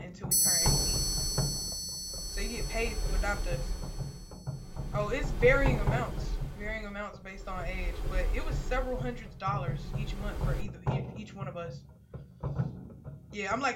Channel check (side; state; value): both; identical; correlation 1.00